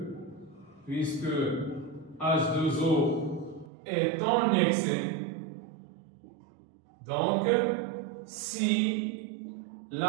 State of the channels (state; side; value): drops out; left; at 3.7 s